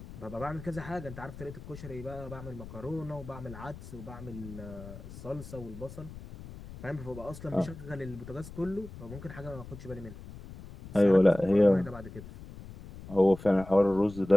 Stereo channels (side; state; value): left; noise; rumble, 14 dB below the sound